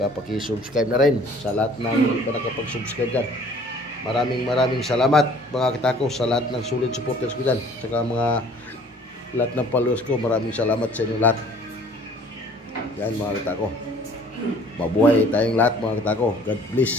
pakisubscribe na rin sa lahat ng hindi pa nakapag-subscribe dyan. Maraming salamat mga kitako sa lahat ng solid supporters ko dyan. Saka lahat ng followers ko, maraming salamat sa inyo lahat. Yan mga kitako. Mabuhay tayong lahat mga kitako. God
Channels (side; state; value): both; normal; correlation 0.53